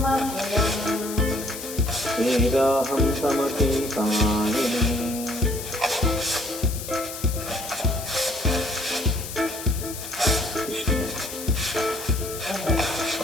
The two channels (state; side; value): noise; left; hiss, 9 dB below the sound